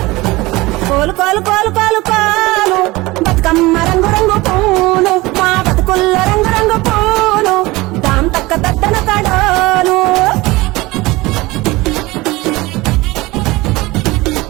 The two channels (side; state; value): left; quieter; 21.0 dB